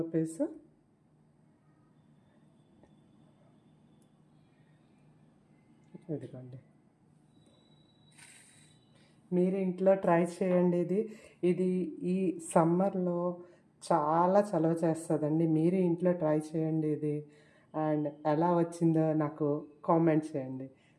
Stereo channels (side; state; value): both; identical; correlation 1.00